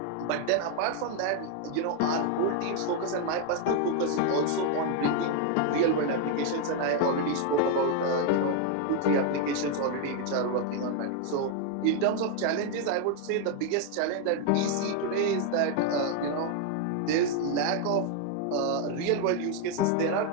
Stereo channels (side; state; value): both; different; correlation 0.01